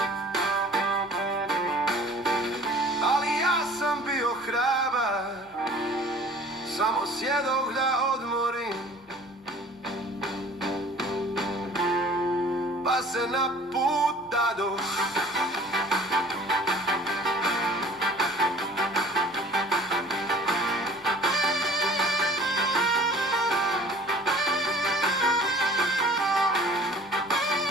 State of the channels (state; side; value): normal; both; correlation 0.49